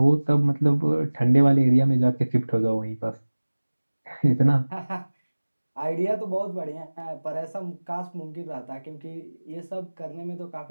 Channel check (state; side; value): inverted; both; correlation -1.00